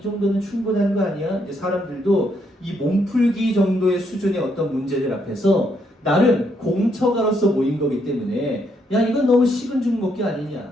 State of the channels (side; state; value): both; normal; correlation 0.75